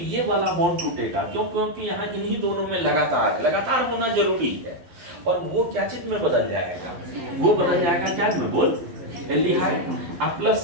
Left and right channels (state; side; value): late; left; 12 ms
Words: ये वाला बॉन्ड टूटेगा। क्यों? क्योंकि यहाँ इन्हीं दोनों में लगातार होना जरूरी है, और वो क्या चीज में बदल जाएगा, वो बदल जाएगा क्या में, बोल, एल्डिहाइड, प्लस